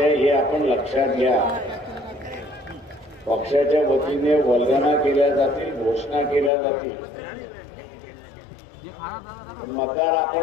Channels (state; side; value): drops out; right; at 6.5 s